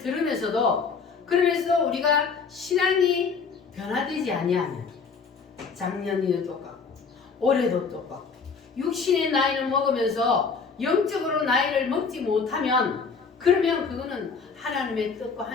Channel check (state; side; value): quieter; right; 5.2 dB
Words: 그러면서 우리가 신앙이 변화되지 아니하면 작년에도 똑같고 올해도 똑같고 육신의 나이를 먹으면서 영적으로 나이를 먹지 못하면 그러면 그거는 하나님의 뜻과